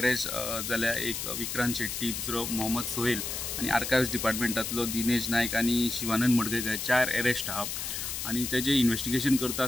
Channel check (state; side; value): noise; left; hiss, 4 dB below the sound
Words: जाल्या। एक विक्रांत शेट्टी, दुसरो मोहम्मद सोहेल आणि आर्कायव्स डिपार्टमेंटातलो दिनेश नायक आणि शिवानंद मडकयकर 4 अरेस्ट आहा। आणि तेजे इन्व्हेस्टिगेशन करता